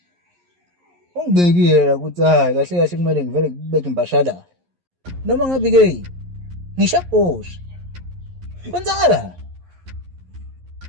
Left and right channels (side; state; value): left; late; 11 ms